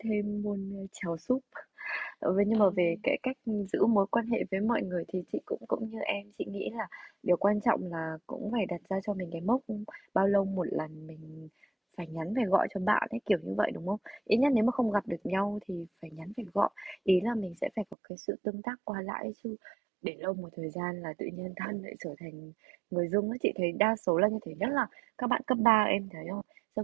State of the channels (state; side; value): drops out; left; at 17.9 s